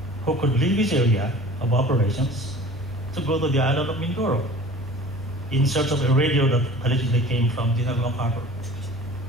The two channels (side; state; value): both; normal; correlation 0.43